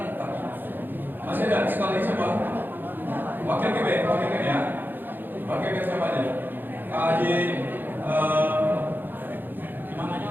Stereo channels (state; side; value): late; left; 0.092 ms